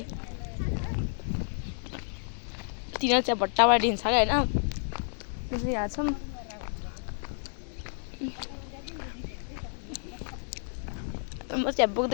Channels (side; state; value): right; silent; digital silence